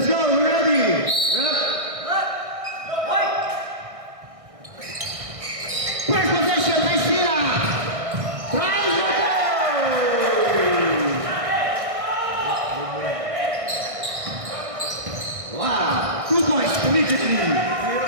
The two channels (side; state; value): left; late; 1.6 ms